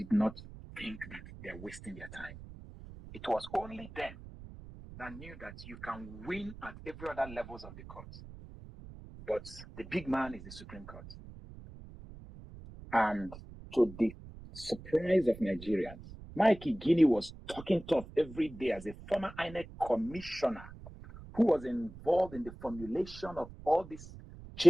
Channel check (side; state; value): right; noise; rumble, 15 dB below the sound